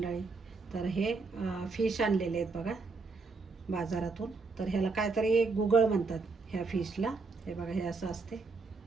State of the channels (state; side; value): quieter; left; 4.1 dB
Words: तर हे फिश आणलेले आहेत बघा बाजारातून. तर ह्याला काहीतरी गुगळ म्हणतात ह्या फिशला. हे बघा हे असं असते